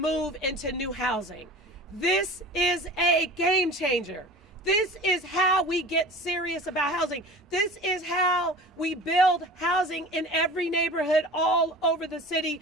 into new housing. This is a game changer. This is how we get serious about housing. This is how we build housing in every neighborhood all over the city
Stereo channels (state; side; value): normal; both; correlation 0.38